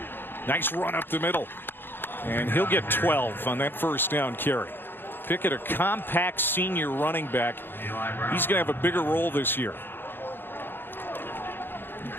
Nice run up the middle. And he'll get 12 on that first down carry. Pickett, a compact senior running back. He's going to have a bigger role this year.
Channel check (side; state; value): right; late; 0.10 ms